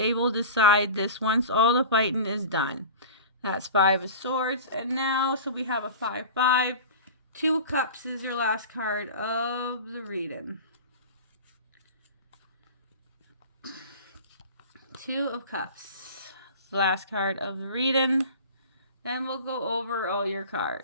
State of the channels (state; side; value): inverted; both; correlation -0.35